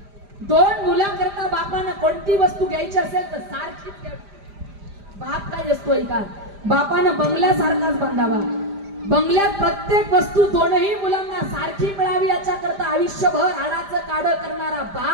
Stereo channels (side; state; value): left; late; 5.0 ms